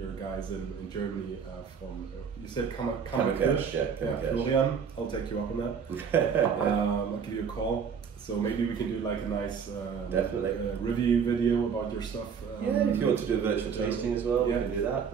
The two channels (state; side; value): quieter; left; 6.7 dB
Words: guys in Germany from, you said Kammerkirch? Yeah, Florian, I'll take you up on that. I'll give you a call. So maybe we can do like a nice review video about your stuff. If you want to do a virtual tasting as well, we can do that.